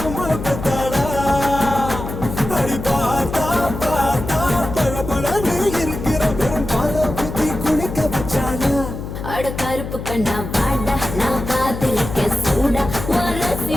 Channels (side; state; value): left; noise; hum, 8 dB below the sound